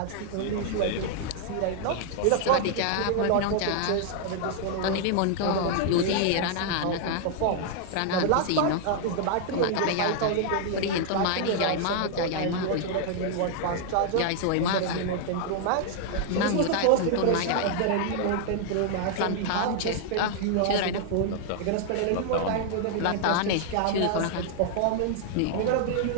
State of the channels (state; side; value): different; both; correlation 0.00